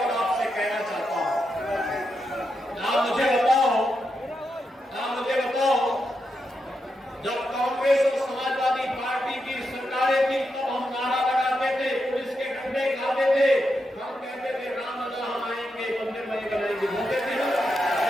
आपसे कहना चाहता हूं, आप मुझे बताओ, जब कांग्रेस और समाजवादी पार्टी की सरकारें थी तब हम नारा लगाते थे, पुलिस के डंडे खाते थे, हम कहते थे राम लला हम आएंगे, मंदिर बने बनाएंगे, बोलते थे ना?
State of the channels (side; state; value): both; normal; correlation 0.85